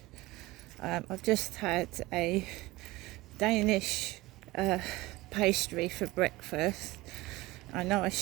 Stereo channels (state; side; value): quieter; left; 19.4 dB